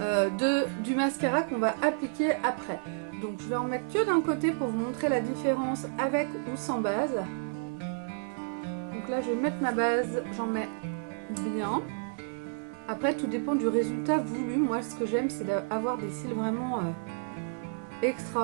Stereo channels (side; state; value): left; silent; 57 dB below the other